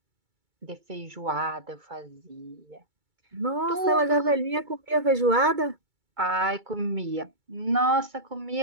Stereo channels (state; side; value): late; left; 2.3 ms